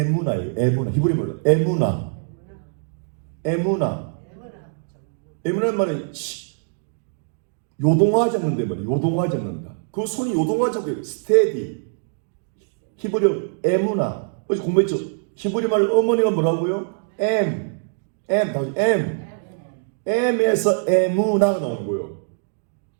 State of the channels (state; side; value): silent; left; digital silence